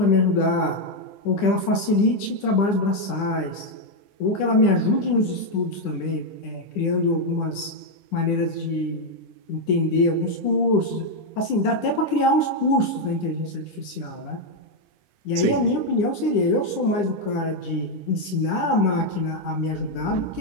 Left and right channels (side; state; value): right; late; 9.9 ms